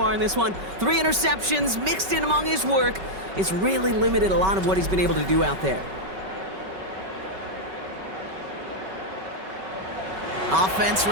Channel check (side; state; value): left; late; 5.3 ms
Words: in this one? 3 interceptions mixed in among his work. It's really limited a lot of what he's been able to do out there. Offense